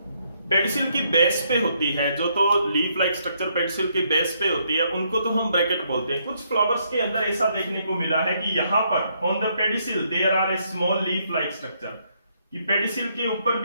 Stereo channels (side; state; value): both; inverted; correlation -0.73